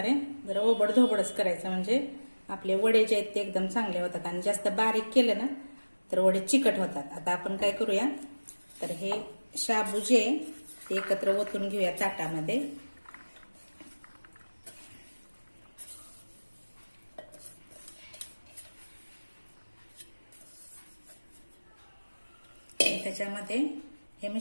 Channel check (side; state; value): both; inverted; correlation -1.00